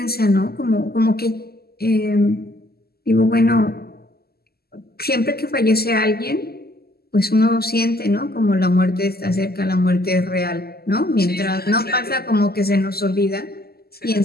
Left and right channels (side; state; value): right; late; 0.46 ms